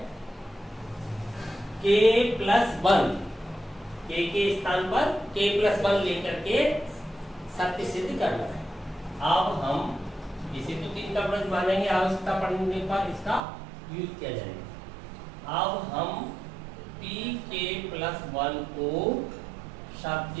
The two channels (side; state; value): left; drops out; at 13.4 s